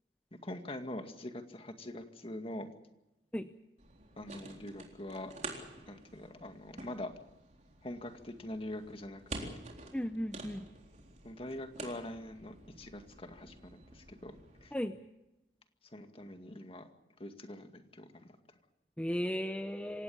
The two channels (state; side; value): normal; both; correlation 0.74